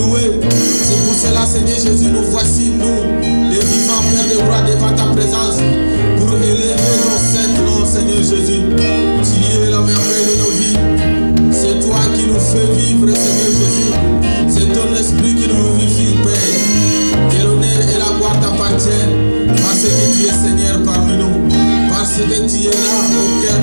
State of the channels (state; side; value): inverted; both; correlation -1.00